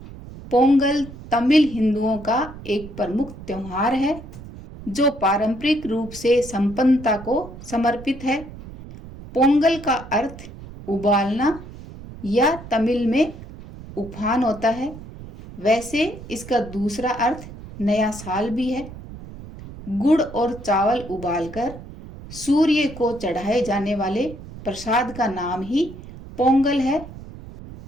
पोंगल तमिल हिंदुओं का एक प्रमुख त्योहार है जो पारंपरिक रूप से संपन्नता को समर्पित है। पोंगल का अर्थ उबालना या तमिल में उफान होता है। वैसे इसका दूसरा अर्थ नया साल भी है। गुड़ और चावल उबालकर सूर्य को चढ़ाए जाने वाले प्रसाद का नाम ही पोंगल है।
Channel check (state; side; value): noise; right; rumble, 15 dB below the sound